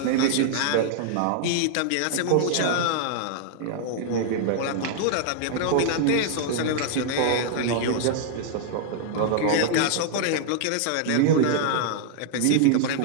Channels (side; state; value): both; different; correlation 0.00